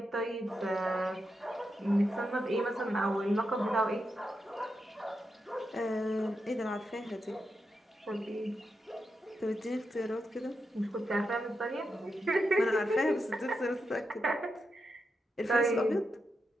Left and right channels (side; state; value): both; normal; correlation 0.86